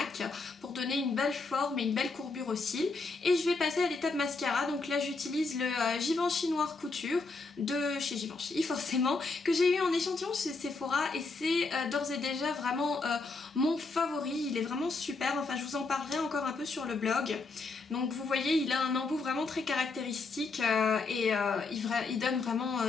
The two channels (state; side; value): quieter; right; 3.9 dB